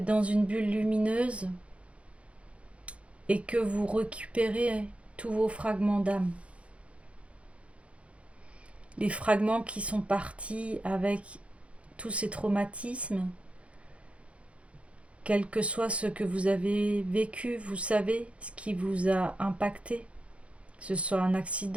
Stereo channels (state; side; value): late; left; 0.062 ms